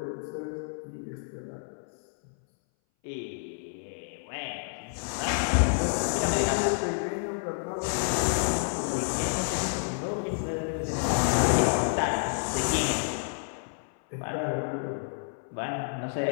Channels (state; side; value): silent; right; 58 dB below the other